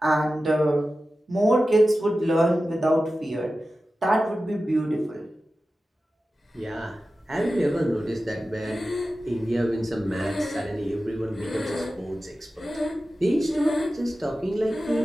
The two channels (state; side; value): normal; both; correlation 0.94